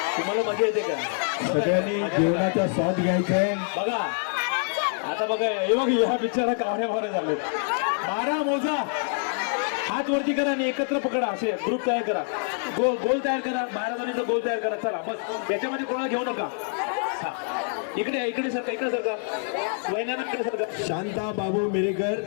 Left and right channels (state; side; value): silent; right; 57 dB below the other